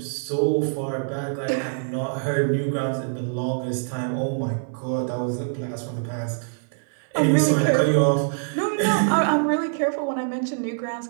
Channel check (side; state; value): left; silent; 58 dB below the other